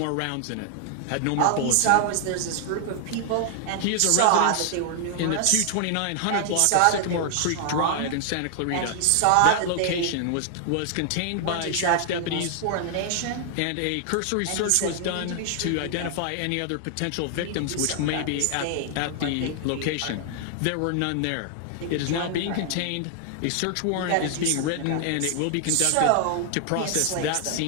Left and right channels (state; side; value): different; both; correlation 0.00